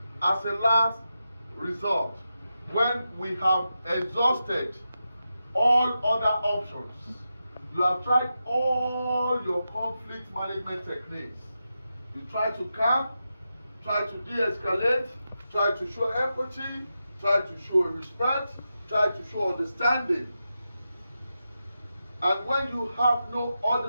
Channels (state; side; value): inverted; both; correlation -0.89